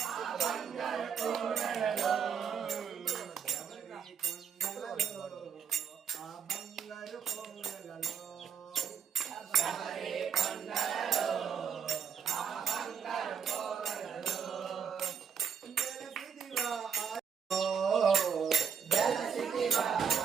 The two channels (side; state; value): left; quieter; 7.2 dB